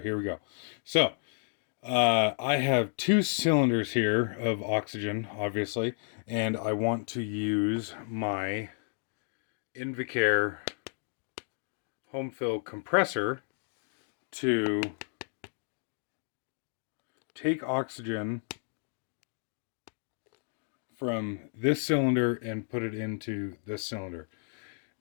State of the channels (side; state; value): right; silent; digital silence